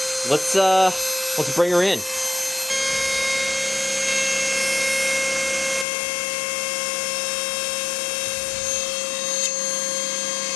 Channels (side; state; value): right; drops out; at 5.9 s